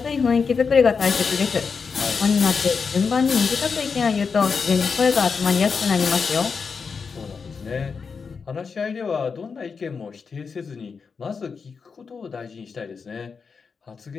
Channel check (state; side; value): quieter; right; 5.4 dB